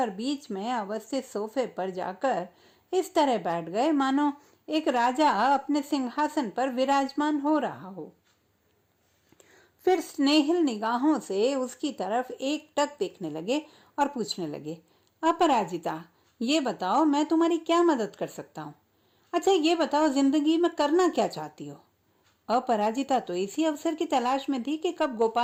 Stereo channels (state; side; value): identical; both; correlation 1.00